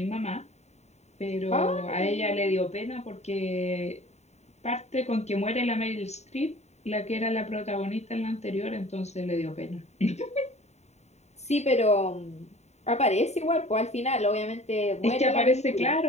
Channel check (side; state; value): right; late; 0.32 ms